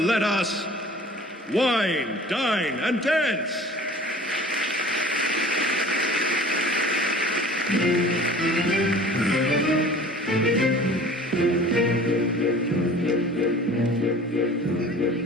us wine, dine, and dance.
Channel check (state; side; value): normal; both; correlation 0.45